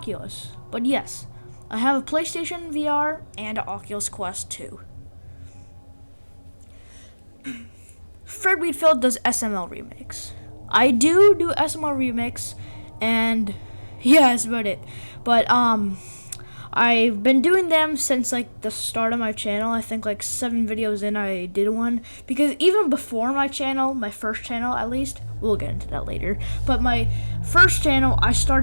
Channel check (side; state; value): both; inverted; correlation -1.00